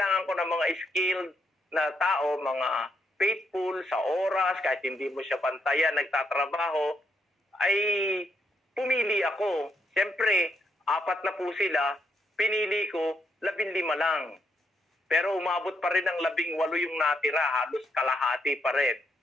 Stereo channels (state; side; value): normal; both; correlation 0.76